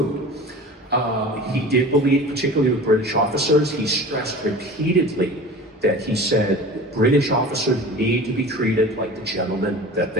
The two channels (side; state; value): both; normal; correlation 0.38